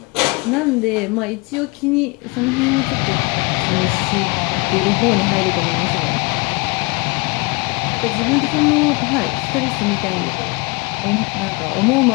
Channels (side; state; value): right; quieter; 27.4 dB